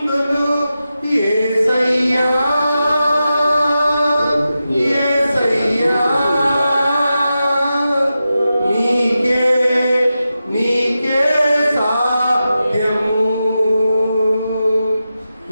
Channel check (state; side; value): inverted; both; correlation -0.91